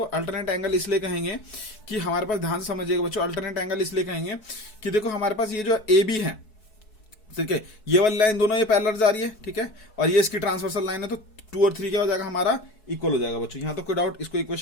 अल्टरनेट एंगल इसलिए कहेंगे कि हमारे पास, ध्यान से समझिएगा बच्चों, अल्टरनेट एंगल इसलिए कहेंगे कि देखो हमारे पास ये जो ए बी है, ठीक है, ये वाली लाइन दोनों ये पैरेलल जा रही है, ठीक है, और ये इसकी ट्रांसवर्सल लाइन है, तो 2 और 3 क्या हो जाएगा हमारा, इक्वल हो जाएगा बच्चों। यहाँ तक कोई डाउट, इसको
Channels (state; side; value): late; right; 4.7 ms